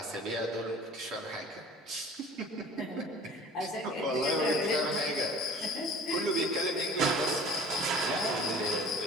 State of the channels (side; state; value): both; normal; correlation 0.47